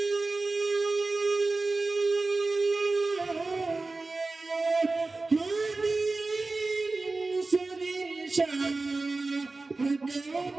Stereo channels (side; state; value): left; quieter; 3.5 dB